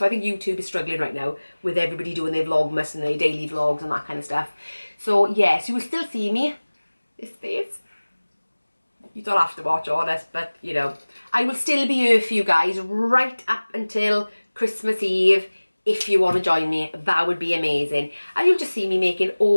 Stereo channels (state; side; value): inverted; both; correlation -1.00